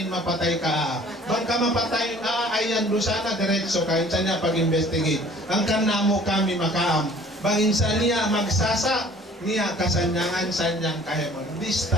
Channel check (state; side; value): normal; both; correlation 0.52